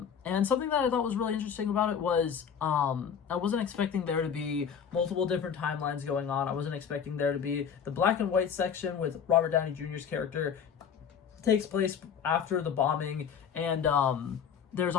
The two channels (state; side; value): quieter; right; 7.5 dB